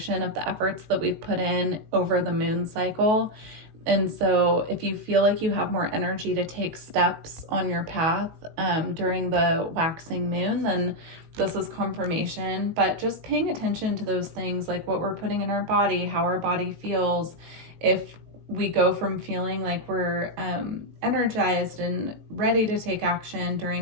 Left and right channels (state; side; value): late; left; 19 ms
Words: of the efforts that we've put in over the moon cycle. And so if you feel like you have more energy to take steps on your path during the waxing moon, then this is confirmation. But just paying attention to those things, like what we're putting in our body, how our body feels. If we go from feeling like we're energized and ready to take action